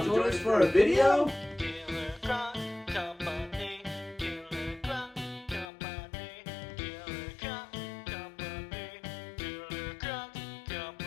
join us for a video?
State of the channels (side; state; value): right; drops out; at 5.7 s